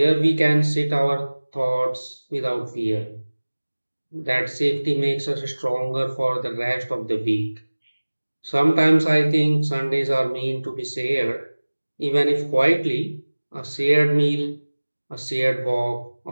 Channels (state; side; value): inverted; both; correlation -1.00